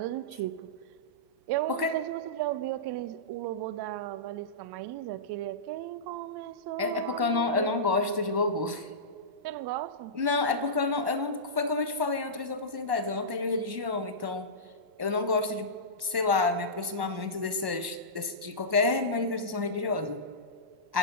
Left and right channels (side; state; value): left; late; 1.1 ms